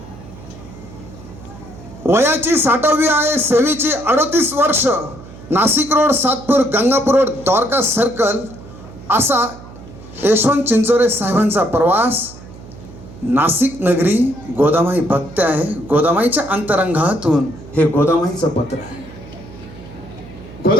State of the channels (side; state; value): right; noise; hum, 17 dB below the sound